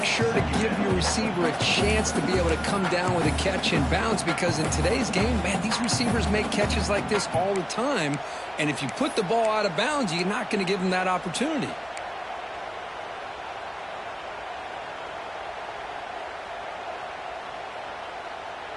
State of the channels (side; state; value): both; identical; correlation 1.00